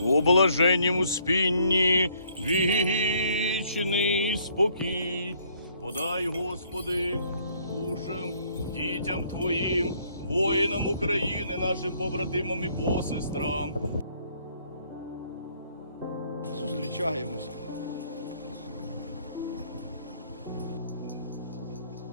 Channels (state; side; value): inverted; both; correlation -0.64